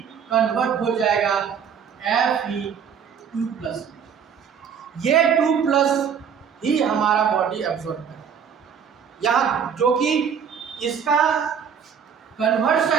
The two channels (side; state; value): left; quieter; 7.3 dB